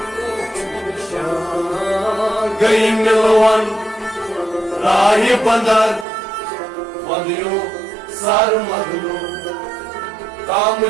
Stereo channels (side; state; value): left; drops out; at 6.1 s